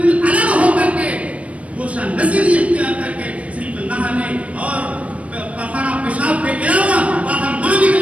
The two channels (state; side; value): late; left; 0.065 ms